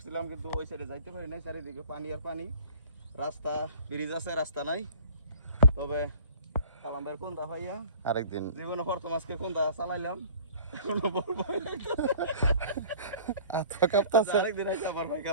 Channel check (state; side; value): inverted; both; correlation -0.47